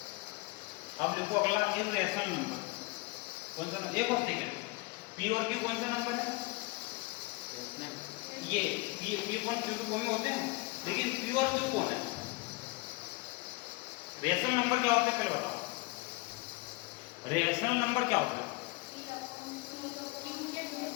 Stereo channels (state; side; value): quieter; right; 24.1 dB